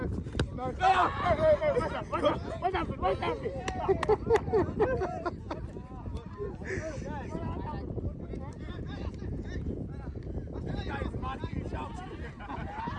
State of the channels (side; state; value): both; identical; correlation 1.00